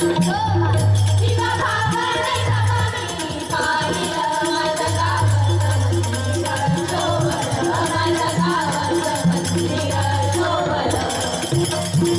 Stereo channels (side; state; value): both; identical; correlation 1.00